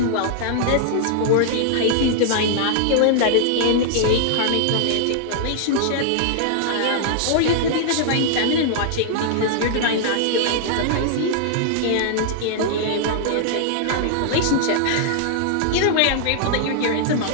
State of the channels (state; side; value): different; both; correlation -0.01